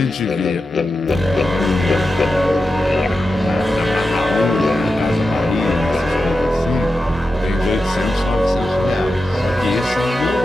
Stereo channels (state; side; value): normal; both; correlation 0.90